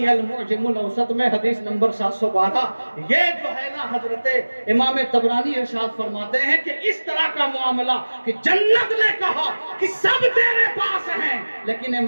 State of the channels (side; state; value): both; inverted; correlation -1.00